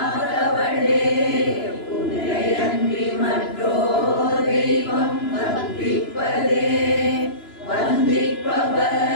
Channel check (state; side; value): late; right; 2.9 ms